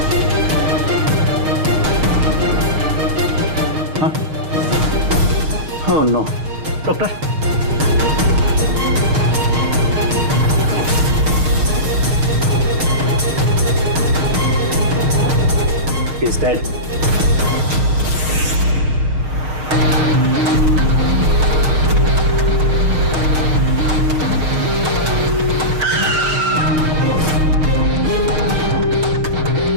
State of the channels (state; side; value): late; left; 6.5 ms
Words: हाँ? Oh no. Doctor, He's dead.